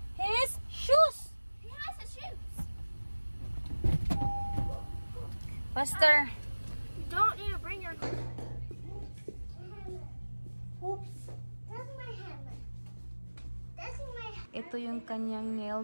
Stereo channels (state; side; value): inverted; both; correlation -1.00